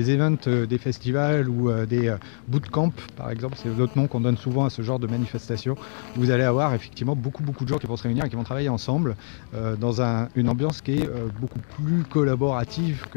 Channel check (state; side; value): silent; right; digital silence